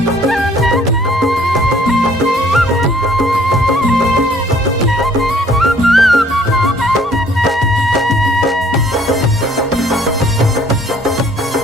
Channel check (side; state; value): both; normal; correlation 0.59